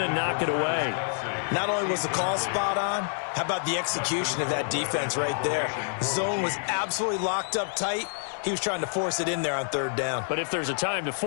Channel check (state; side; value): silent; right; digital silence